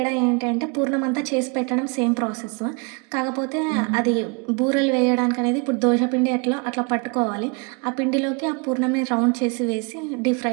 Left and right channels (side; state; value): left; quieter; 32.4 dB